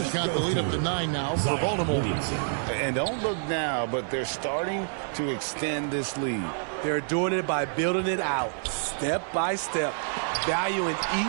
got the lead up to 9 now for Baltimore. And don't look now, but they're starting to extend this lead. They're doing it by building it out, step by step, valuing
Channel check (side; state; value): left; silent; digital silence